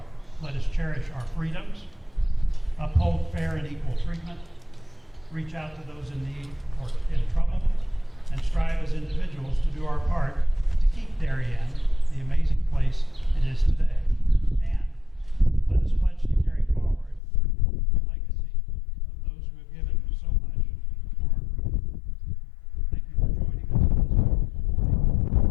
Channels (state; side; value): drops out; right; at 17.2 s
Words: Let us cherish our freedoms, uphold fair and equal treatment, reach out to those in need or in trouble, and strive as individuals to do our part to keep Darien the amazing place it is today. And let us pledge to carry forward the legacy of those who have given so much for our freedom. Thank you for joining us on this wonderful